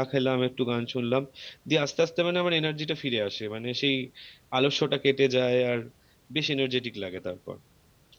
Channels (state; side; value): identical; both; correlation 1.00